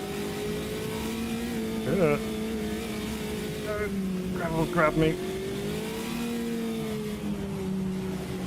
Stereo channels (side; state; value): both; identical; correlation 1.00